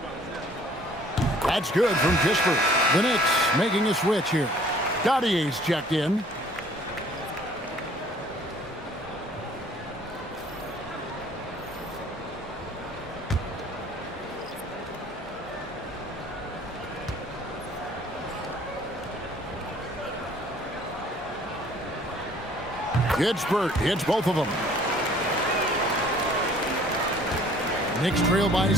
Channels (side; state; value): both; normal; correlation 0.55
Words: That's good from Kispert. The Knicks making a switch here. Gaudier's checked in. Kispert hits both of them. Knicks trail by